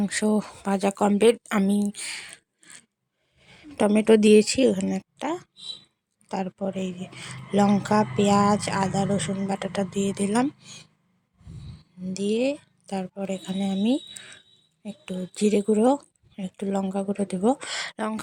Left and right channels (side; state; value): both; identical; correlation 1.00